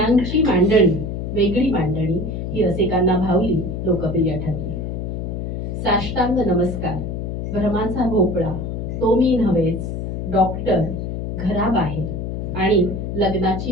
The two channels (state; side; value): noise; left; hum, 4 dB below the sound